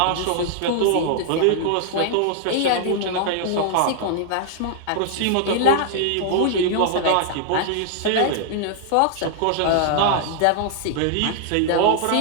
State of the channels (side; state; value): both; different; correlation -0.01